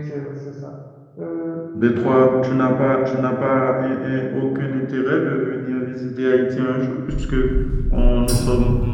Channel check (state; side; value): identical; both; correlation 1.00